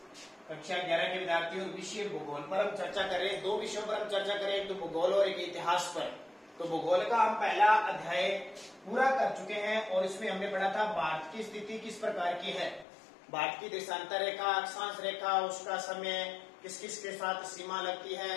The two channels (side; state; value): right; drops out; at 12.9 s